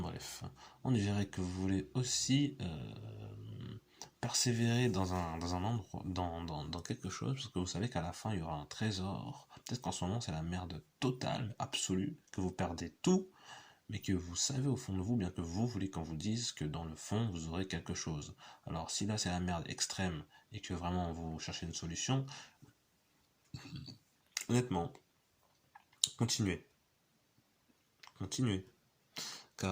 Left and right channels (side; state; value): both; identical; correlation 1.00